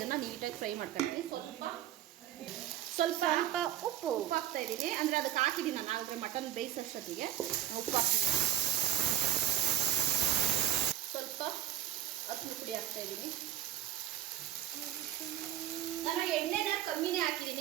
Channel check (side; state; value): left; quieter; 11.9 dB